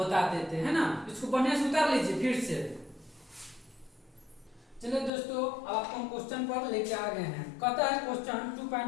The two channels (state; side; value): drops out; right; at 5.1 s